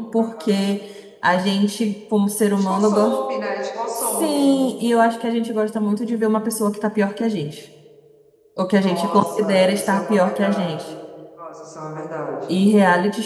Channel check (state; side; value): identical; both; correlation 1.00